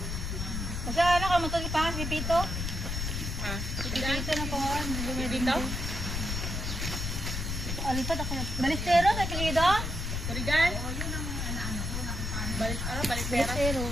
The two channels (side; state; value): left; noise; rumble, 3 dB below the sound